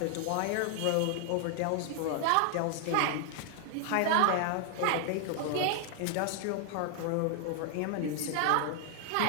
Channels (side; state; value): both; different; correlation 0.00